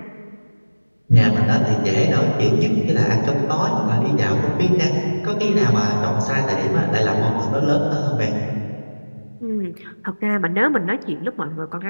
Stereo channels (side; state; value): both; inverted; correlation -1.00